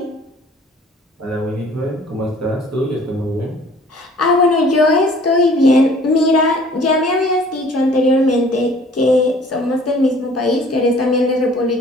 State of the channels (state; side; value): normal; both; correlation 0.53